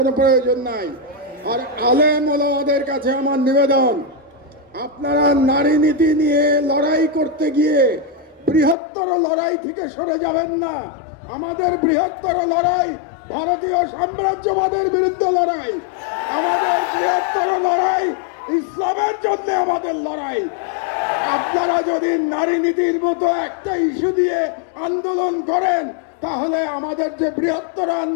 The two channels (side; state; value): right; drops out; at 8.8 s